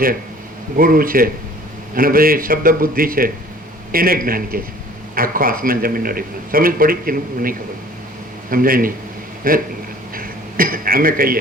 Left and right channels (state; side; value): normal; both; correlation 0.51